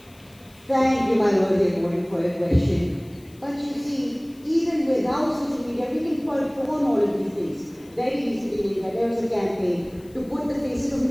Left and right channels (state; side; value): noise; left; hiss, 27 dB below the sound